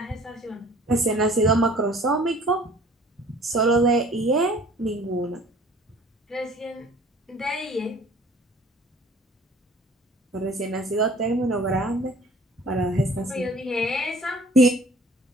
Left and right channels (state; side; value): normal; both; correlation 0.51